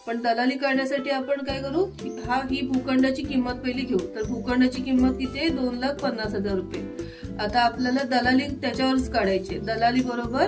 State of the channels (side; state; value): both; identical; correlation 1.00